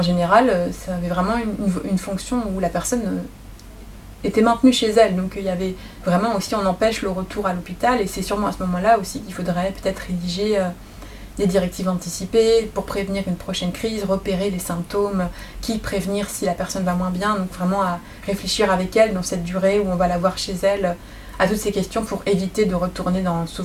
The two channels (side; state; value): both; identical; correlation 1.00